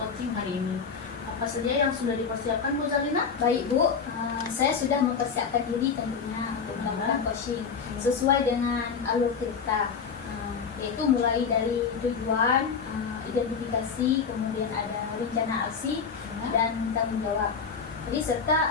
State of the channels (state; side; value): quieter; right; 5.9 dB